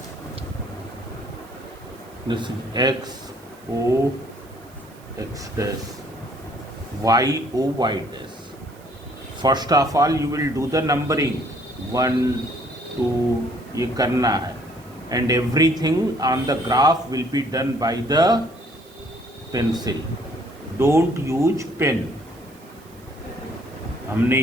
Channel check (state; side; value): noise; right; hiss, 27 dB below the sound